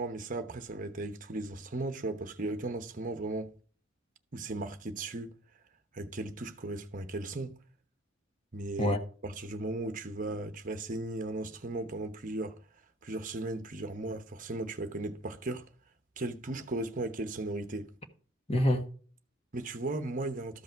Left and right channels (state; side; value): normal; both; correlation 0.53